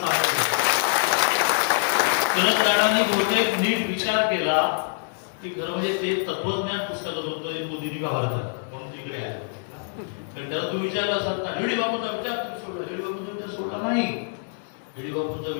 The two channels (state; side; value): silent; right; digital silence